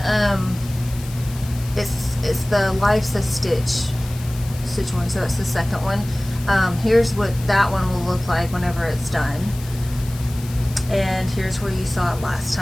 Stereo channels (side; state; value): left; noise; hiss, 17 dB below the sound